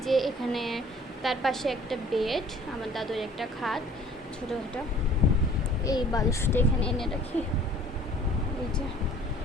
যে এখানে তার পাশে একটা বেড, আমার দাদুর একটা খাট ছোটোখাটো, এই বালিশটা এখানে এনে রাখি, এই যে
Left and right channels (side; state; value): both; normal; correlation 0.52